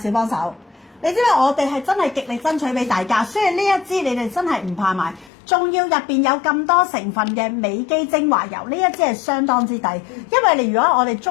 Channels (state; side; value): drops out; right; at 5.3 s